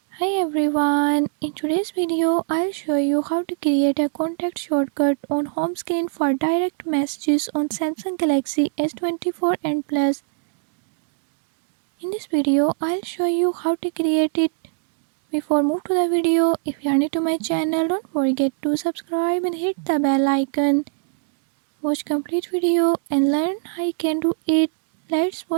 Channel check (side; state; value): left; silent; digital silence